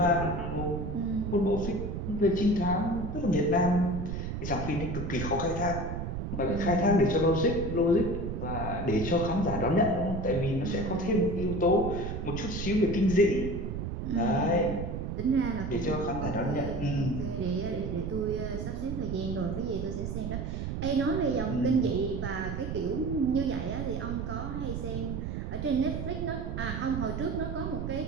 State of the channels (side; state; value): right; noise; rumble, 4 dB below the sound